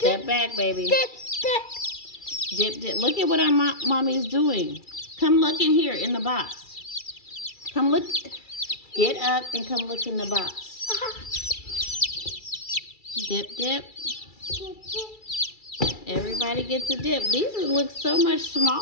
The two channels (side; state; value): right; late; 2.3 ms